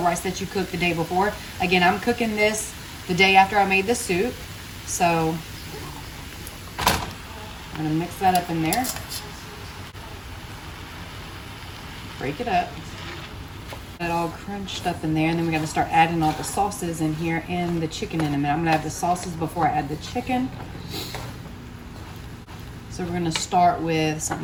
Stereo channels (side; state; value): both; identical; correlation 1.00